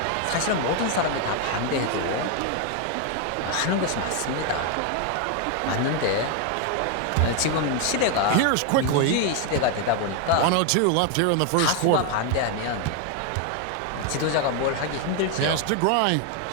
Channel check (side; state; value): both; different; correlation 0.01